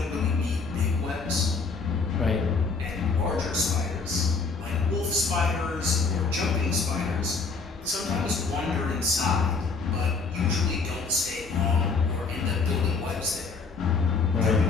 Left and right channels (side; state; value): right; quieter; 4.5 dB